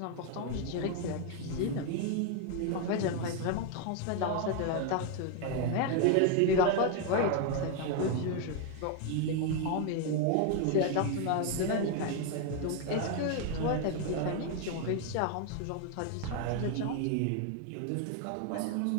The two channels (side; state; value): both; different; correlation 0.01